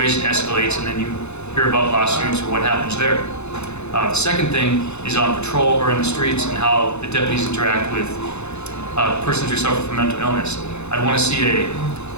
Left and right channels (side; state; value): right; late; 0.81 ms